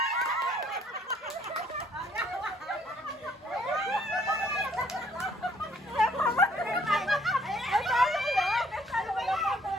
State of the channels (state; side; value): normal; both; correlation 0.64